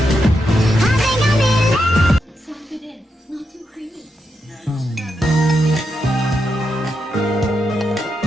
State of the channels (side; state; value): both; normal; correlation 0.84